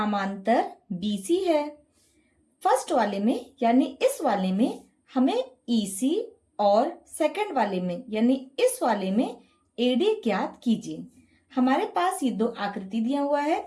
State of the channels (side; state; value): both; identical; correlation 1.00